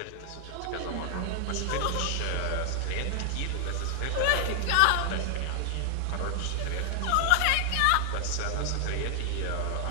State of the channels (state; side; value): different; both; correlation 0.00